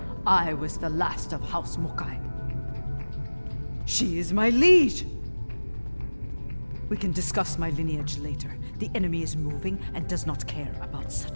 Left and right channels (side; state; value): both; inverted; correlation -1.00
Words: I was the last of House Mokai. She is my liege! We can discuss my lineage later. The enemy is moving and does not care about